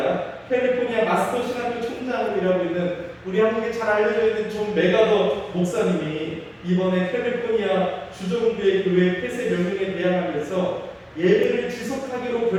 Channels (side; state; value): both; identical; correlation 1.00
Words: 캘리포니아 마스터 신학교 총장으로 일하고 있는 우리 한국에 잘 알려져 있는 존 메가더 목사님이 이번에 캘리포니아 주정부의 교회 폐쇄 명령에 대항하면서 예배를 지속하기로